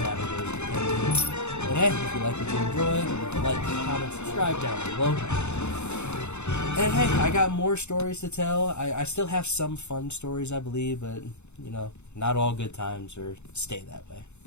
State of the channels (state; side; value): late; right; 0.82 ms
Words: depending. And hey, if you like what you enjoyed, leave a like, comment, subscribe down below. And hey, I got more stories to tell. I still have some fun stories, I believe, but not all good times or stay that way.